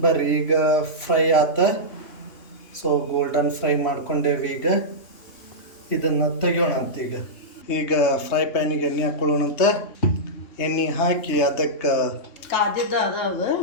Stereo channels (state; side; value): late; right; 3.2 ms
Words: ಬರ್ರಿ ಈಗ ಫ್ರೈ ಆತ. ಸೊ ಗೋಲ್ಡನ್ ಫ್ರೈ ಮಾಡ್ಕೊಂಡೇವಿ. ಈಗ ಇದನ್ನು ತೆಗಿಯೋಣ ಅಂತ. ಈಗ ಫ್ರೈ ಪ್ಯಾನಿಗೆ ಎಣ್ಣೆ ಹಾಕ್ಕೊಳ್ಳೋಣಂತ. ಎಣ್ಣೆ ಹಾಕಿ ಅದಕ್ಕೆ